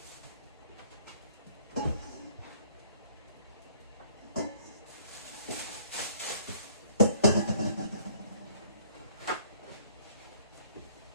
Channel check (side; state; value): both; inverted; correlation -0.59